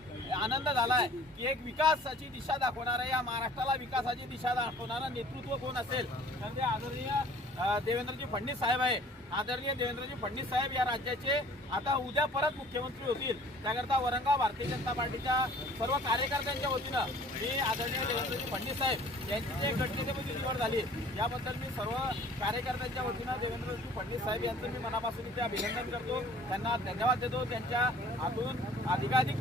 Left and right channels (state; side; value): normal; both; correlation 0.51